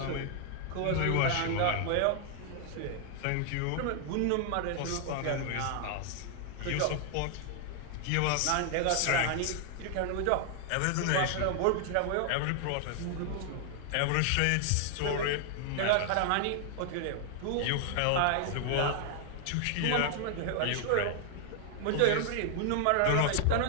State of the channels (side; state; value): both; different; correlation 0.00